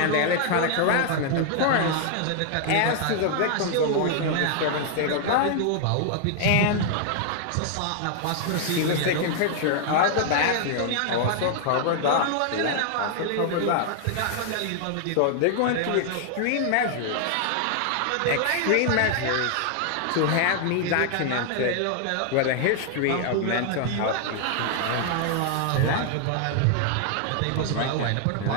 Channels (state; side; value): different; both; correlation 0.00